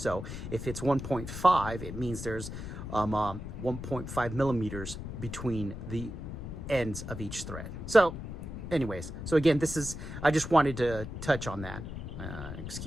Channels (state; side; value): noise; left; rumble, 8 dB below the sound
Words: if it's 1.5, it means there's 1.5 millimeters between the ends of each thread. So anyways, so again, this is, I just wanted to touch on that.